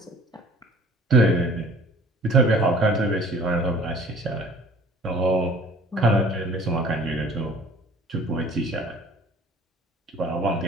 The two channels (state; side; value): normal; both; correlation 0.49